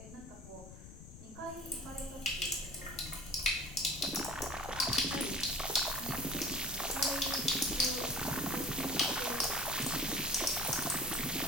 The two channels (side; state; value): left; noise; rumble, 15 dB below the sound